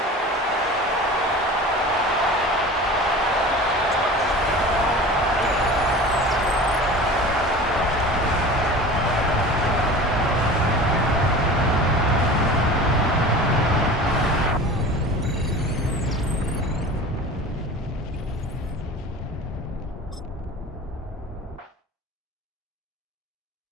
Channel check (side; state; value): both; normal; correlation 0.37